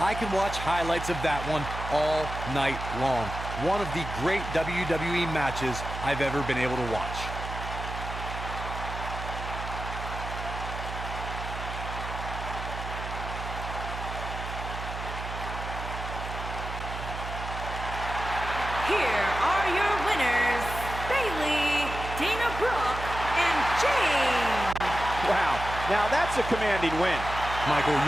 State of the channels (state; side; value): noise; right; hum, 7 dB below the sound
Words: can watch highlights of that one all night long. One of the great WWE matches I've ever been able to watch. Here are your winners, Bayley, Dana Brooke, and James. Wow, now that's a commanding win. Michael,